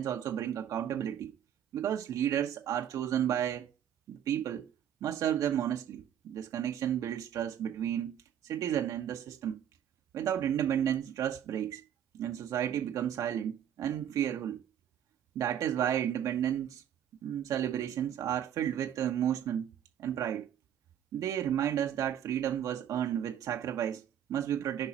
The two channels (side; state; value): left; quieter; 9.9 dB